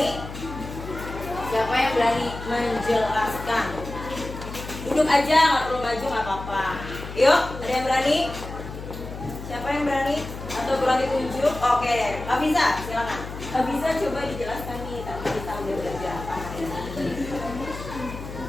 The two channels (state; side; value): noise; left; hum, 10 dB below the sound